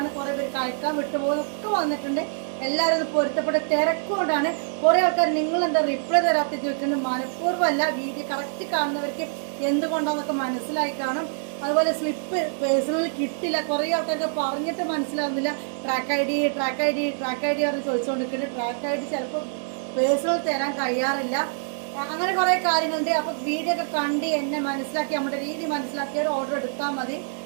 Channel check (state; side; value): silent; left; digital silence